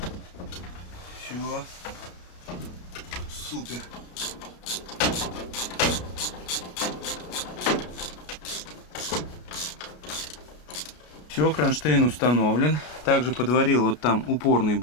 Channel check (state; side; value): late; right; 33 ms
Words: Все. Супер. Все, кронштейн установлен. Также подварил вот там упорный